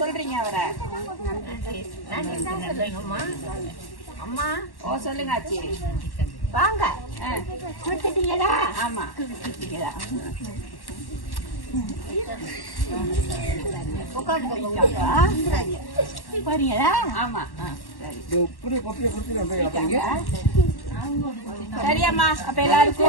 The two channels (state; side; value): late; right; 1.1 ms